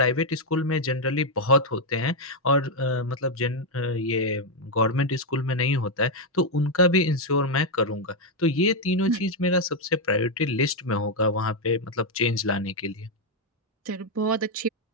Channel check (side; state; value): both; normal; correlation 0.00